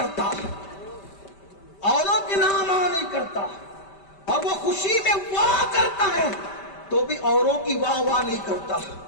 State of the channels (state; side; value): late; right; 5.1 ms